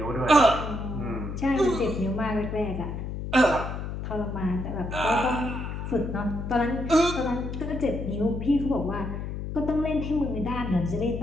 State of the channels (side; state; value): left; noise; hum, 5 dB below the sound